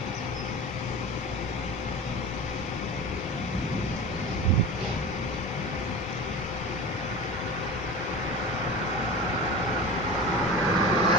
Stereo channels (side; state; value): both; normal; correlation 0.31